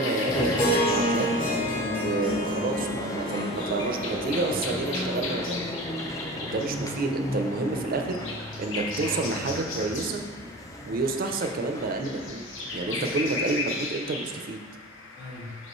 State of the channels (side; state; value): both; normal; correlation 0.34